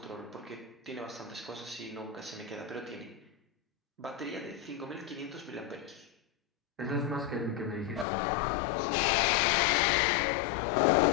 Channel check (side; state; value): right; drops out; at 8.1 s